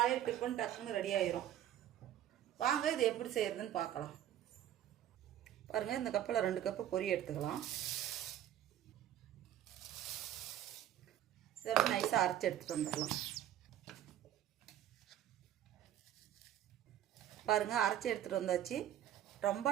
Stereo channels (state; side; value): quieter; left; 11.6 dB